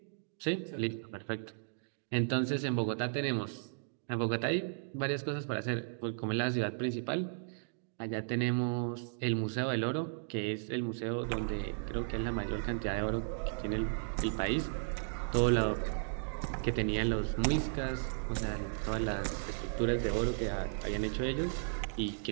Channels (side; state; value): left; silent; digital silence